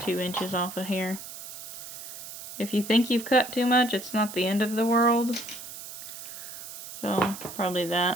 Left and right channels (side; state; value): right; noise; hiss, 11 dB below the sound